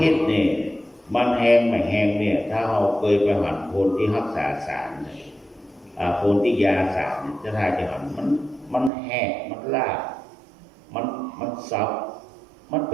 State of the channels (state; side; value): drops out; left; at 8.9 s